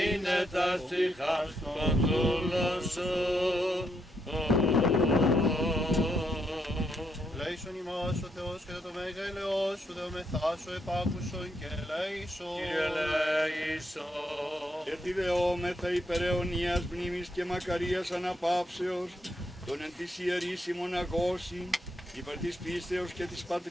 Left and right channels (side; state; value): both; normal; correlation 0.78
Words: τα ψυχάς των δούλων σου. Ελέησον ημάς ο Θεός και το μέγα ελεός σου, δεομεθάσω επάκουσον και ελέησον. Κύριε ελέησον. Γιατί δεόμεθα υπερ αιωνίας μνήμης και μακαρίας αναπαύσεως, τον εν της ιερής ημών αγώσει, υπέρ της πίστεως και της